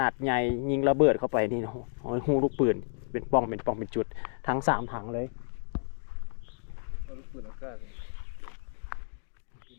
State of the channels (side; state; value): right; silent; 57 dB below the other